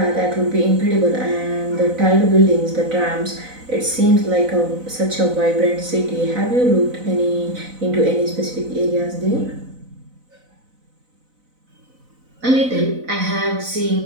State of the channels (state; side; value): late; left; 4.0 ms